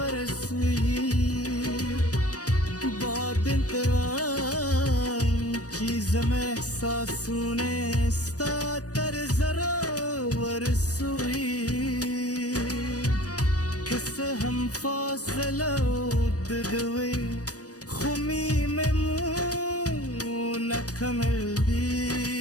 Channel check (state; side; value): late; right; 0.67 ms